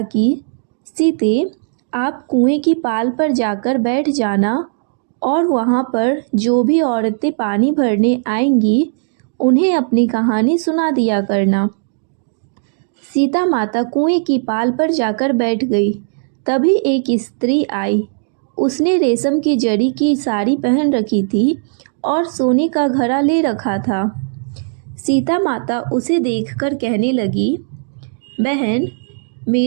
कि सीते, आप कुएं की पाल पर जाकर बैठ जाना और वहाँ पर जो भी औरतें पानी भरने आएंगी उन्हें अपनी कहानी सुना दिया करना। सीता माता कुएं की पाल पर जाकर बैठ गई। तभी एक स्त्री आई। उसने रेशम की जरी की साड़ी पहन रखी थी और सोने का घड़ा ले रखा था। सीता माता उसे देखकर कहने लगी, बहन,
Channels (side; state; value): left; silent; digital silence